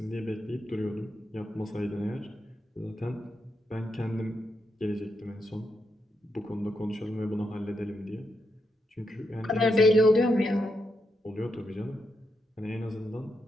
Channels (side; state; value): both; normal; correlation 0.83